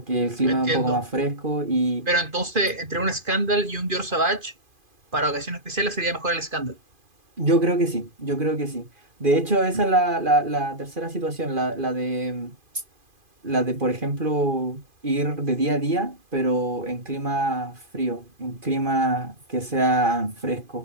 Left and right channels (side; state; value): left; late; 2.5 ms